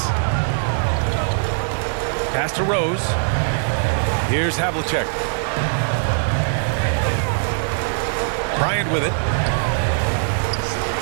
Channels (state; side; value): silent; left; digital silence